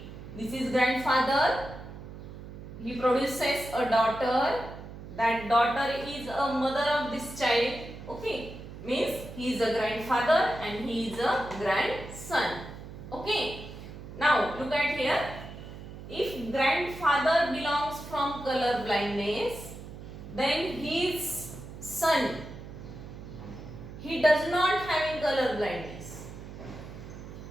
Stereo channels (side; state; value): right; noise; hum, 13 dB below the sound